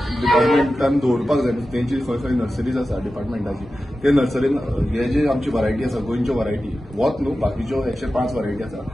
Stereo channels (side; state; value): both; normal; correlation 0.93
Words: डिपार्टमेंटान दवरपाक जाय तेंची खंय खंय नर्सरीज आसा डिपार्टमेंटाची ते नर्सरीन हे जे आमची वरायटी आसा गोंयच्यो वरायटी वोत न्हू बाकीच्यो 105 वरायटी आसा